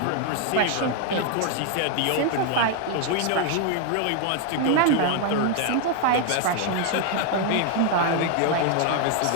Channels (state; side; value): different; both; correlation 0.00